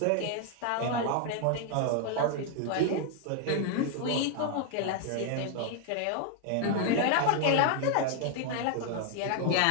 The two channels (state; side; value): different; both; correlation 0.00